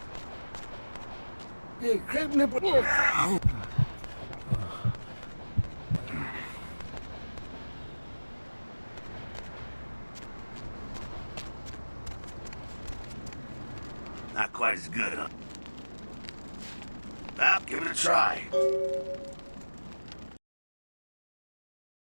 Not quite as good, huh? Well, give it a try.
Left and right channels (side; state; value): both; inverted; correlation -1.00